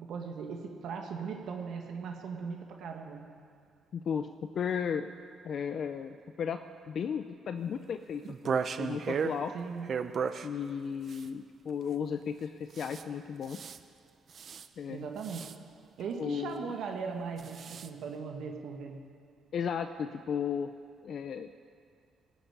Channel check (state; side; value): normal; both; correlation 0.70